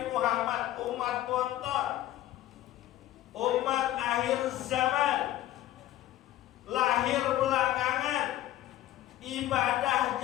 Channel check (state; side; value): quieter; right; 14.0 dB